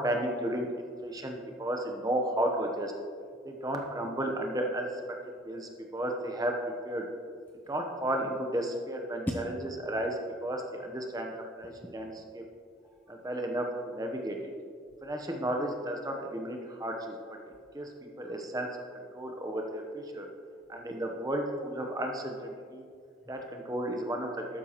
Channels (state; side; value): normal; both; correlation 0.53